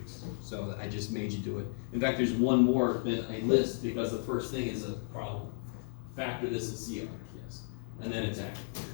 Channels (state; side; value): silent; right; digital silence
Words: So I just made you do it. In fact, there's one more that I list because the first thing is a problem. Factor this in CR. Yes, and then it's active.